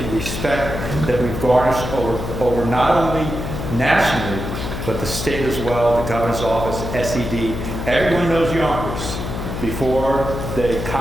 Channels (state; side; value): noise; left; hum, 5 dB below the sound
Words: respect that we've garnished over not only nationally, but the state as well, the governor's office, SED. Everyone knows Yonkers. Before, they